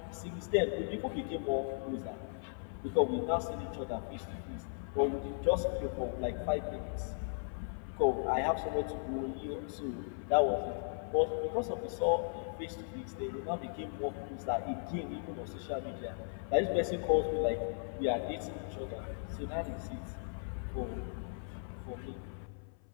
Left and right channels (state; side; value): silent; right; 53 dB below the other